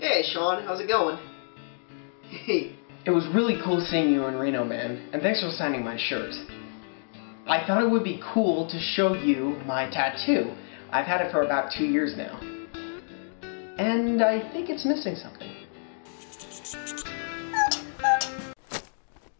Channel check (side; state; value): right; silent; digital silence